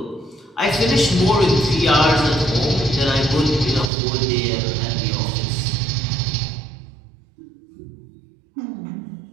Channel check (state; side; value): drops out; left; at 3.9 s